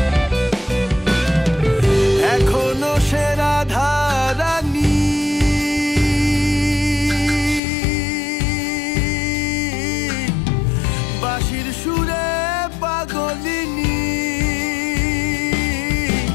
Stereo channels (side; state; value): right; drops out; at 7.6 s